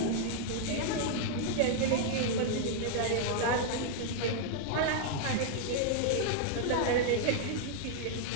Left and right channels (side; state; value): both; different; correlation -0.01